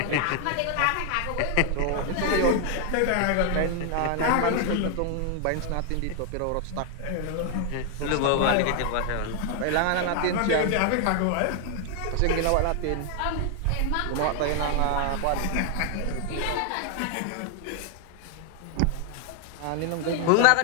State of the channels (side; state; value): both; different; correlation 0.00